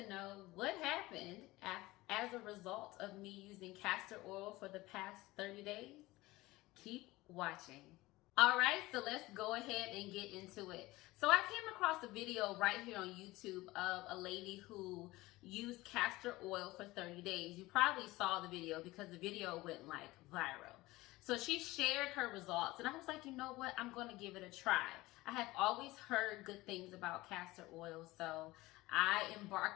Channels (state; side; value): quieter; right; 19.5 dB